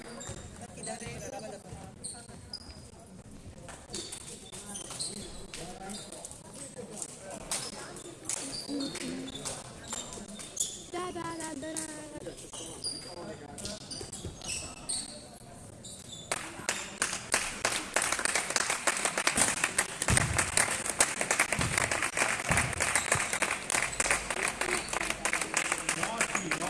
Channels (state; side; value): identical; both; correlation 1.00